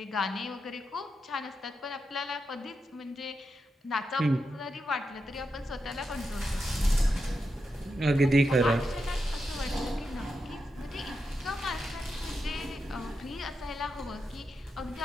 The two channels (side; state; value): both; normal; correlation 0.87